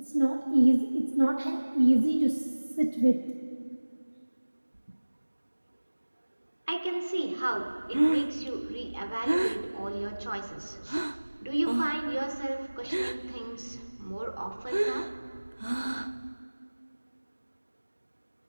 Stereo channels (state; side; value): inverted; both; correlation -1.00